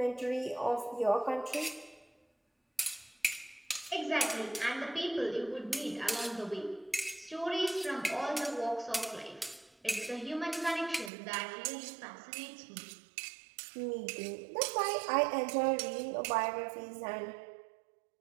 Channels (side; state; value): left; drops out; at 11.1 s